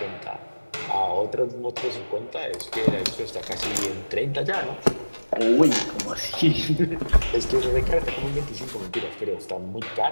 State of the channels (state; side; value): inverted; both; correlation -1.00